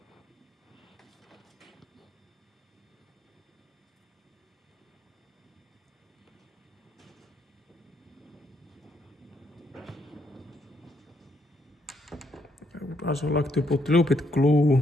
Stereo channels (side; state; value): both; normal; correlation 0.73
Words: I would also like to put a little bit